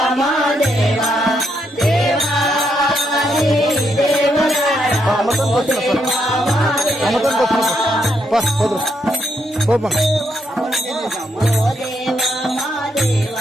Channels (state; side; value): normal; both; correlation 0.77